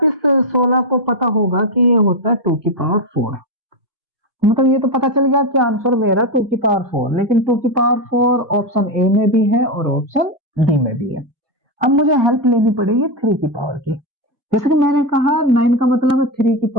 इस 16 को पता होगा कि ये होता है 2 की पावर 4। मतलब ये तो पता चल गया कि आंसर मेरा 2 की पावर 4, लेकिन 2 की पावर 4 ऑप्शन ए में भी है और ऑप्शन डी में भी है। अब मुझे हेल्प लेनी पड़ेगी 3 की पावर की। जैसे कि मैंने कहा, 9 का मतलब है 3 की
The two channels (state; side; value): late; left; 1.7 ms